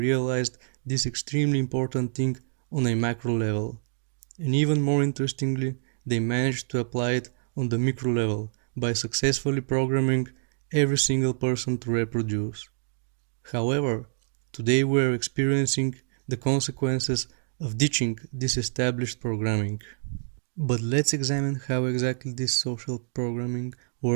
this extremely important thing on a macro level. And even more interestingly, they managed to apply it on the micro level by successfully programming every single person to reproduce. However, today we are experiencing the consequences of ditching this established programming. But let's examine how exactly this social programming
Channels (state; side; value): silent; left; digital silence